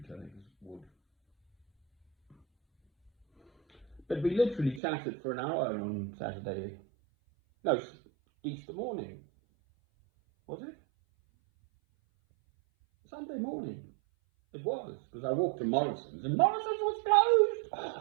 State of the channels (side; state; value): left; drops out; at 4.8 s